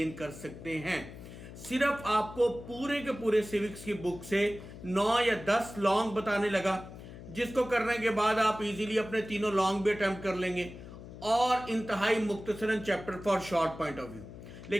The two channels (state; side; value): noise; left; hum, 14 dB below the sound